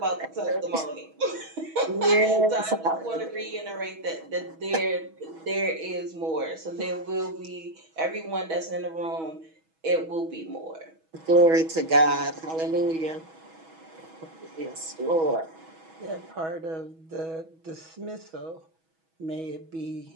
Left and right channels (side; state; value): left; late; 6.2 ms